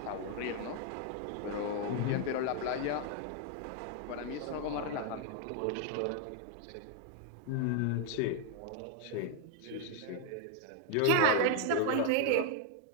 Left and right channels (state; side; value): different; both; correlation 0.00